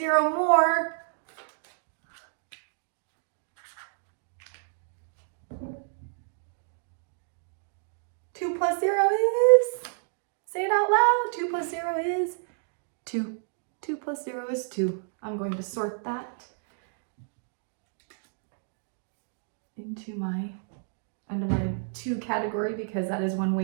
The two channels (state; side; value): silent; left; digital silence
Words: more. Two plus 0 is, say it out loud, 2 plus 0 is 2. 2 plus 0 is 2. I'm going to sort that under my 2 category because that is one